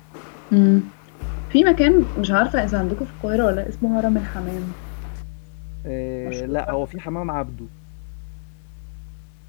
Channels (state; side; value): silent; right; 64 dB below the other